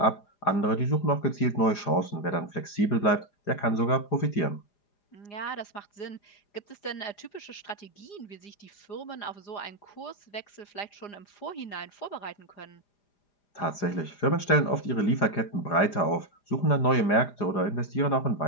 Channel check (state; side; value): late; right; 4.9 ms